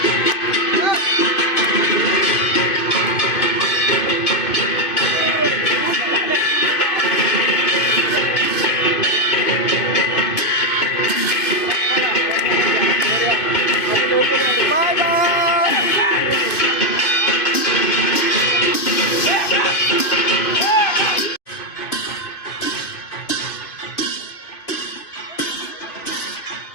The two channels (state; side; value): late; right; 2.5 ms